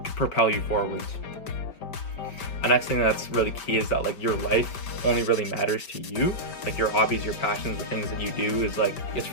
propel you forwards. The next thing that's really key is that like your life only really matters to you. Like your hobbies, your passions, the things that you do is like it's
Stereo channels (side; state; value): right; late; 5.1 ms